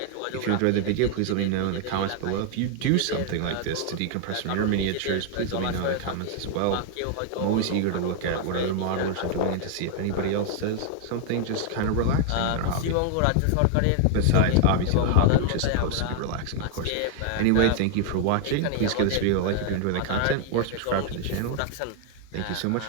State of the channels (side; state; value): both; different; correlation 0.00